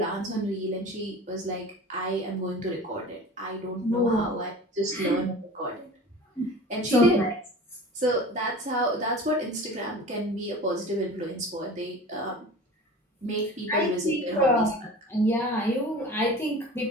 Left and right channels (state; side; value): normal; both; correlation 0.38